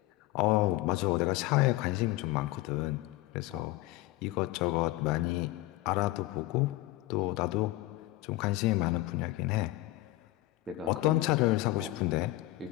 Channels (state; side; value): quieter; right; 18.0 dB